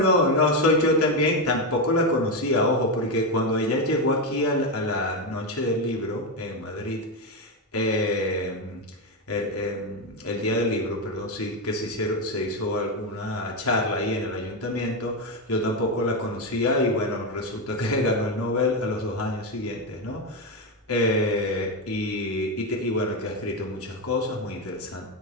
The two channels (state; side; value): normal; both; correlation 0.09